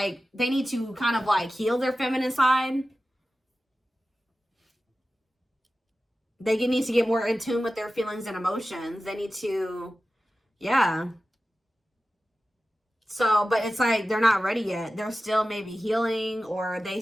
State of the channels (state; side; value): normal; both; correlation 0.94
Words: need to kind of like heal their feminine side. They need to get more in tune with their feelings and emotions. They need to, yeah. So, but it's like they're not ready yet. They're still maybe healing, or they